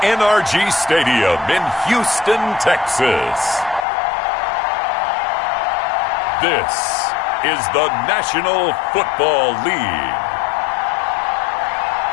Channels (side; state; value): right; drops out; at 3.9 s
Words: NRG Stadium in Houston, Texas, this is the National Football League.